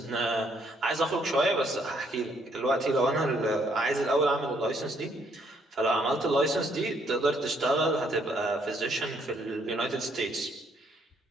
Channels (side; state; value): both; normal; correlation 0.69